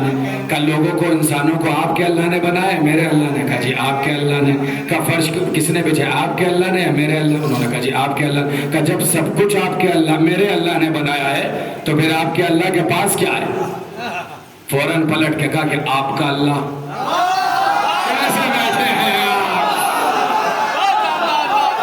نے۔ کہا لوگوں کو انسانوں کو آپ کے اللہ نے بنایا ہے میرے اللہ نے؟ کہا جی آپ کے اللہ نے۔ کہا فرش کس نے بچھایا آپ کے اللہ نے یا میرے اللہ؟ انہوں نے کہا جی آپ کے اللہ۔ کہا جب سب کچھ آپ کے اللہ میرے اللہ نے بنایا ہے تو پھر آپ کے اللہ کے پاس کیا ہے؟ فوراً پلٹ کے کہا کہ آپ کا اللہ کیسے بیٹھے ہیں آپ؟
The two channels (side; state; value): both; identical; correlation 1.00